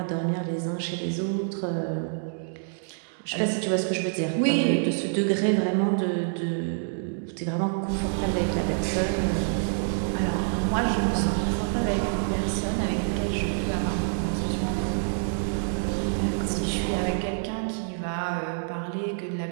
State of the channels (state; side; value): silent; left; digital silence